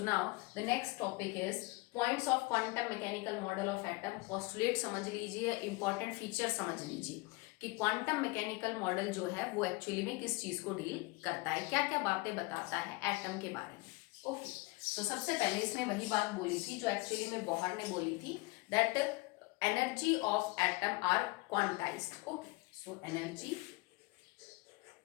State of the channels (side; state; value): right; quieter; 24.6 dB